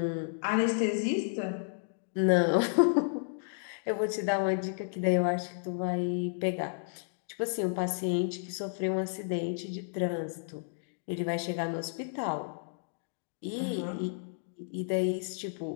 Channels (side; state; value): right; silent; digital silence